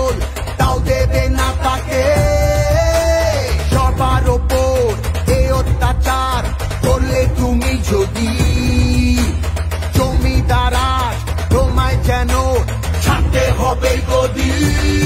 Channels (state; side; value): identical; both; correlation 1.00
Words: তাও দেবে না তাকে। সবার ওপর এ অত্যাচার করলে তুমি যদি, জমিদার তোমায় যেন ছাড়তে হবে গদি।